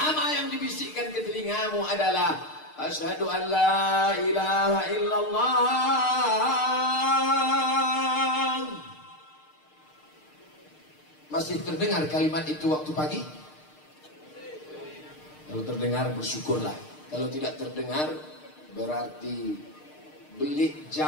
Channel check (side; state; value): right; late; 6.6 ms